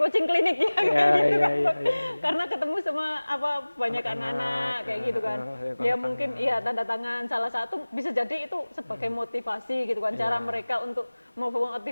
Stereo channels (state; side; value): inverted; both; correlation -1.00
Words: coaching klinik ya kayak gitu kan. Karena ketemu sama banyak anak-anak kayak gitu kan. Ya mungkin iya tanda tangan salah satu bisa jadi itu sebagai motivasi gitu kan, cara mereka untuk